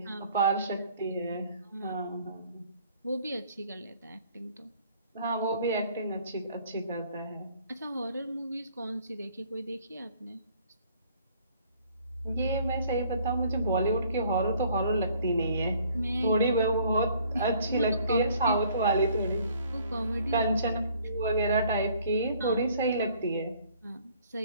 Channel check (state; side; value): inverted; both; correlation -0.59